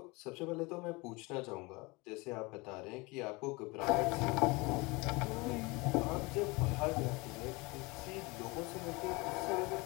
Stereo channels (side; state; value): right; quieter; 25.2 dB